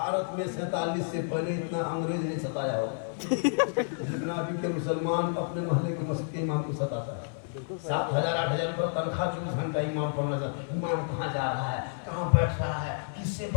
में 47 से पहले इतना अंग्रेज नहीं सताया हो जितना अभी के मुसलमान अपने मोहल्ले के मस्जिद के इमाम को सताता है। 7,000-8,000 रुपये तनख्वाह, 24 घंटा इमाम पढ़ना था। इमाम कहाँ जा रहा है, कहाँ बैठ रहा है, किससे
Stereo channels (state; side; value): silent; right; 58 dB below the other